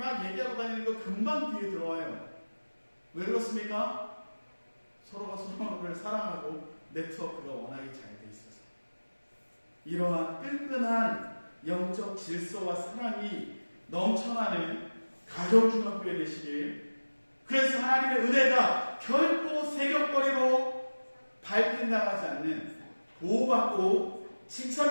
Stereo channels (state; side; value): inverted; both; correlation -1.00